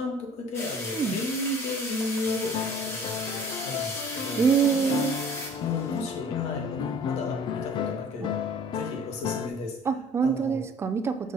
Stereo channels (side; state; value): both; normal; correlation 0.49